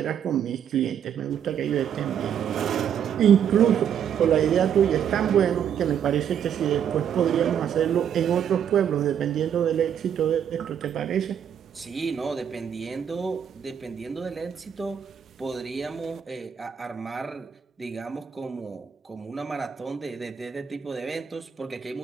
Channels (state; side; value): quieter; left; 8.5 dB